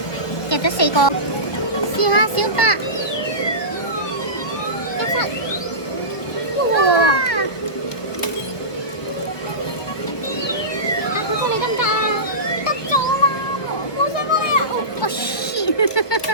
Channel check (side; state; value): right; late; 1.2 ms